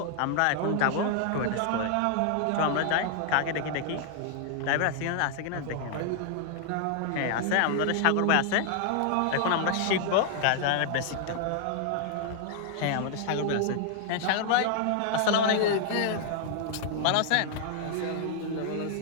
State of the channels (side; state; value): both; different; correlation 0.00